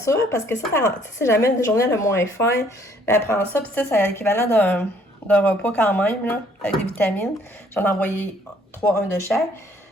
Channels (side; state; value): both; normal; correlation 0.62